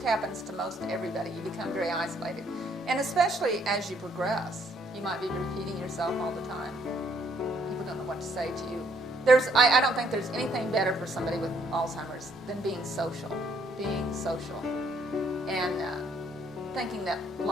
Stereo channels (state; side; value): normal; both; correlation 0.67